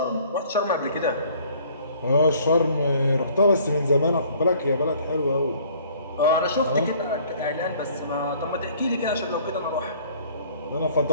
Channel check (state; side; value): inverted; both; correlation -0.56